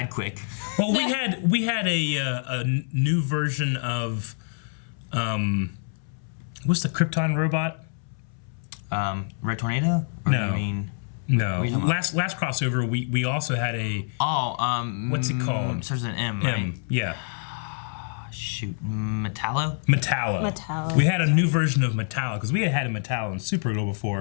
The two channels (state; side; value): silent; right; 61 dB below the other